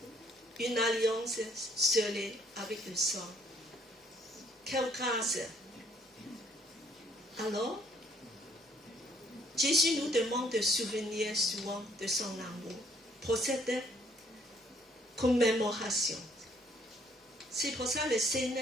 Une alliance scellée avec le sang. Quelle grâce! Alors, Jésus nous demande de souvenir souvent de son amour pour cette commémoration. C'est pour ça que le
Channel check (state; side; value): normal; both; correlation 0.64